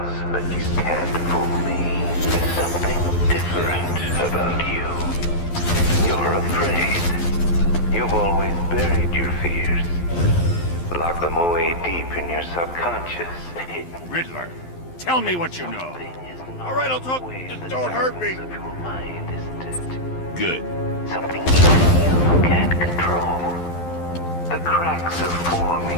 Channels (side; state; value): right; late; 12 ms